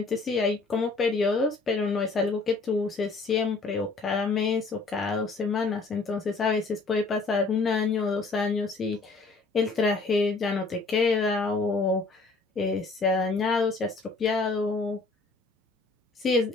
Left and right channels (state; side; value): quieter; right; 3.8 dB